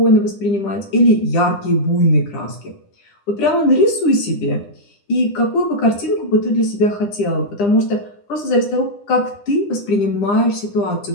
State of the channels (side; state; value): right; late; 9.9 ms